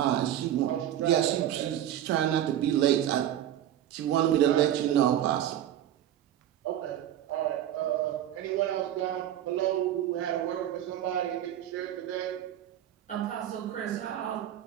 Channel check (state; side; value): quieter; left; 11.5 dB